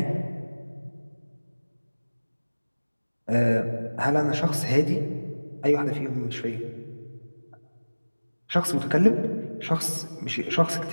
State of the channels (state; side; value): inverted; both; correlation -1.00